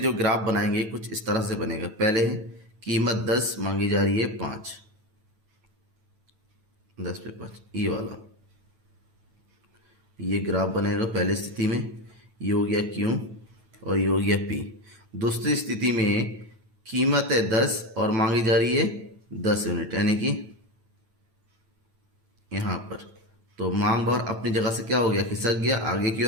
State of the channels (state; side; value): late; left; 9.1 ms